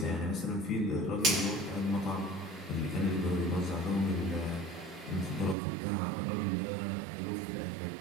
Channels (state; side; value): drops out; left; at 5.6 s